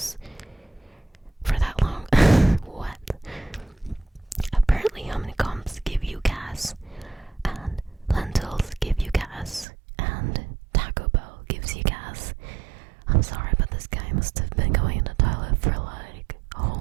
for that long? What? Apparently honeycombs give you gas, and lentils give you gas, and Taco Bell gives you gas. I'm sorry, but this guy must have been going in the toilet for like a whole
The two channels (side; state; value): left; drops out; at 9.7 s